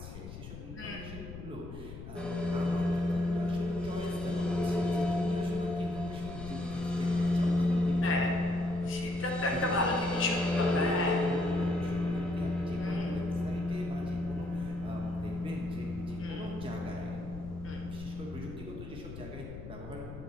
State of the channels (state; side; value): noise; left; rumble, 11 dB below the sound